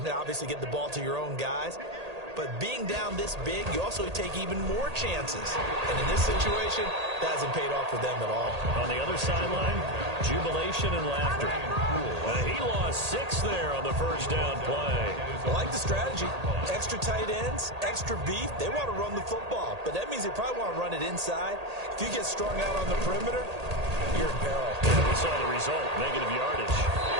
obviously get the ball to your own guys. But being down this big, you also take even more chances. And in this situation, that hasn't paid off for them at all. On the other sideline, jubilation and laughter. He lost 6 there on the first down play. I like the strategy. Extra tight ends, extra beef. They want to run the football, but that means they probably want to run it inside. If you get strung out on the perimeter, you're in peril. We saw the result, negative yardage.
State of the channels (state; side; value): late; left; 1.8 ms